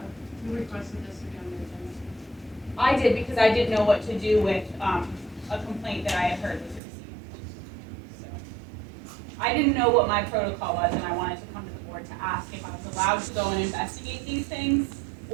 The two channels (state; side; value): drops out; left; at 6.8 s